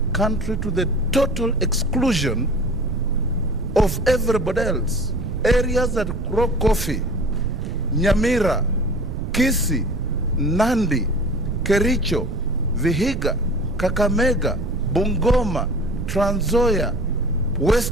to the total exclusion of everybody else. Areas that grow coffee, Nyamira, Kisii, Nandi, Kericho, Vihiga, Kakamega, Bungoma, Trans Nzoia,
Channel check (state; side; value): noise; right; rumble, 5 dB below the sound